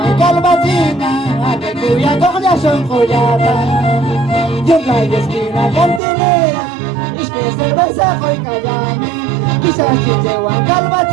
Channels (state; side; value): drops out; left; at 6.0 s